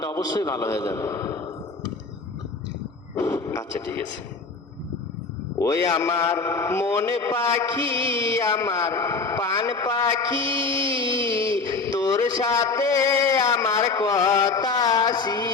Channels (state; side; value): quieter; right; 4.2 dB